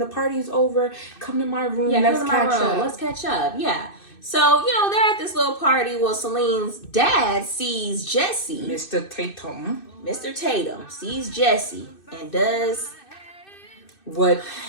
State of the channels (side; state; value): right; late; 2.6 ms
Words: party's over, come to my room. Yeah, let's catch up. Let's catch up." Yeah. So, they're at this little party. Well, Celine's dad sees Jesse. Mr. Tatum sees Jesse and does what